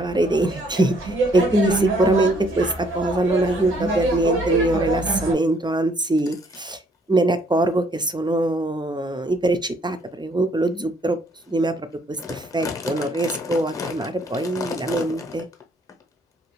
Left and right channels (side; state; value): both; normal; correlation 0.65